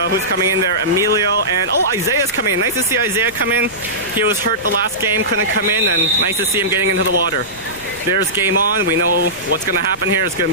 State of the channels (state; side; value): noise; left; rumble, 21 dB below the sound